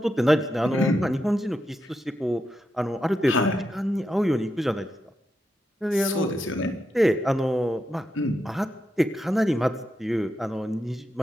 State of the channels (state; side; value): normal; both; correlation 0.85